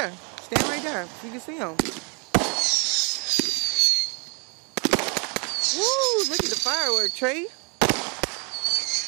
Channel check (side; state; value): left; quieter; 35.7 dB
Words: stand right there so you can see them. Woo, look at the firework, Trey.